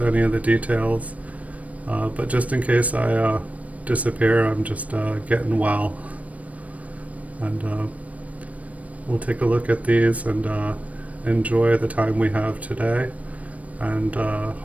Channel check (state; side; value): late; left; 0.068 ms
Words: any of the details. But just in case I disappear, I'm just getting well. And we'll take a look at these and enjoy the time we have today, and